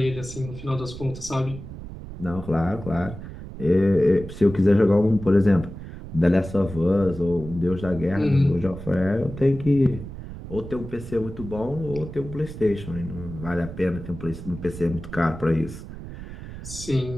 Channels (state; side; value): noise; right; rumble, 11 dB below the sound